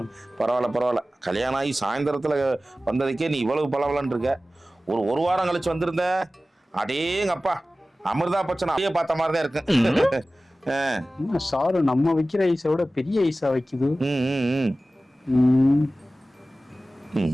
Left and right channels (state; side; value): normal; both; correlation 0.96